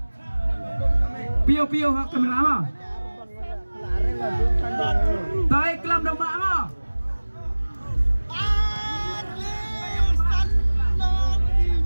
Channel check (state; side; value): inverted; both; correlation -1.00